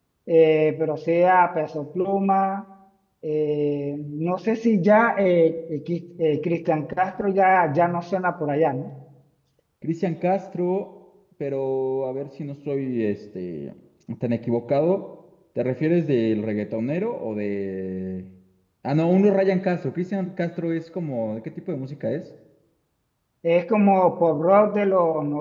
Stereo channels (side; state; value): both; identical; correlation 1.00